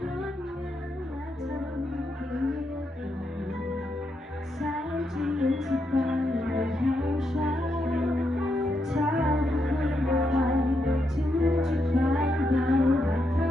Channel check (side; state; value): both; normal; correlation 0.81